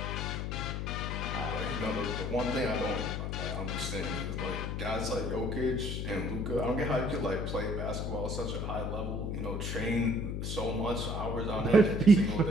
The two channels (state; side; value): noise; left; hum, 2 dB below the sound